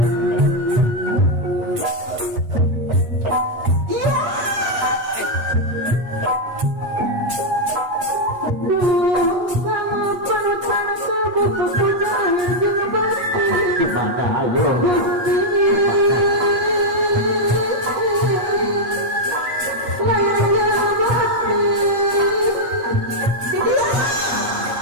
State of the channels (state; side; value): late; left; 8.4 ms